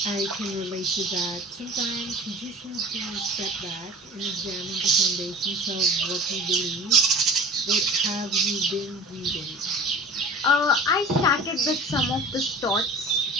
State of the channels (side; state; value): both; normal; correlation 0.40